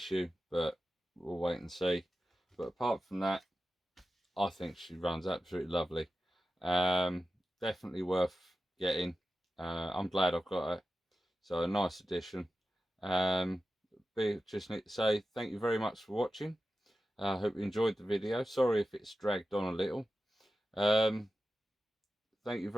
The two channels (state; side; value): normal; both; correlation 0.92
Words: but we'll wait and see. But apart from that, I think she runs absolutely lovely. Definitely worth getting. I'm glad I've got her, so a nice addition. Just need to say thank you very much for watching. I hope you enjoyed the video. Sorry if it's dragged on a little. Thank you